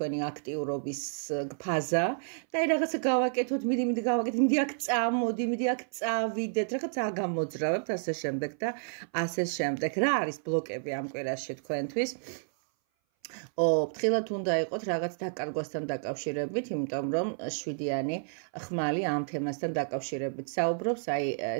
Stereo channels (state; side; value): silent; left; 57 dB below the other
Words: აქტიურობის ფაზა და აი რაღაცა გავაკეთოთ, მიდი გავაკეთოთ, მიდი აქ წამოდი, მიდი აქ წავიდეთ, რაღაც აგამოძრავებთ ასე შემდეგ და ასე შემდეგ. რა არის ბლოკები ამ კვირაში თქვენთვის? ფრთხილად უნდა იყოთ რაღაც დაკარგვასთან დაკავშირებით, იმიტომ რომ 7-იანი ხმალი ამ თემასთან დაკავშირებით საუბრობს, აი